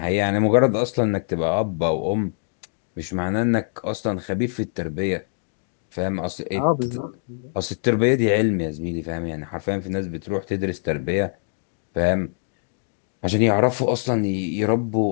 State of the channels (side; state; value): right; silent; digital silence